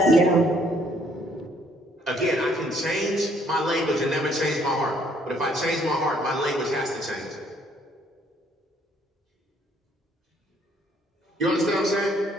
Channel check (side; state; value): both; normal; correlation 0.65